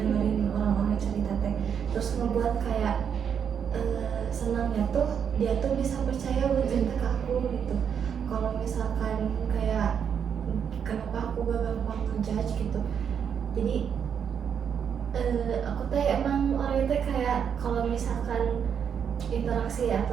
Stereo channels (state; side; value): quieter; left; 7.6 dB